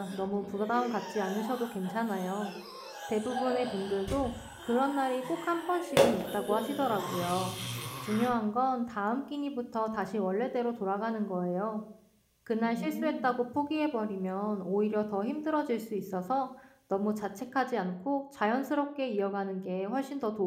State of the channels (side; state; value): both; identical; correlation 1.00